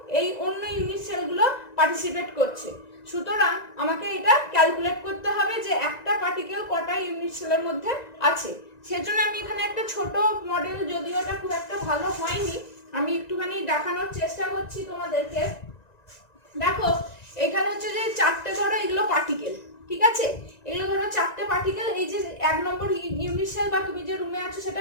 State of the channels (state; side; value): late; right; 1.9 ms